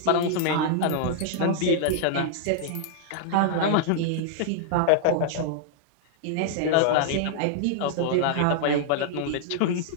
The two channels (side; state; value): both; different; correlation -0.01